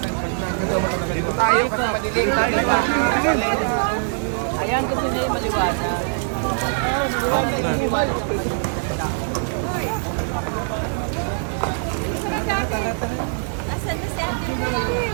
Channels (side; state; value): left; silent; digital silence